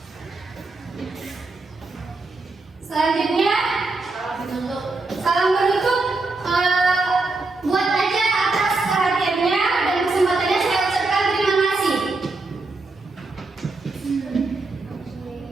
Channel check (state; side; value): quieter; left; 3.4 dB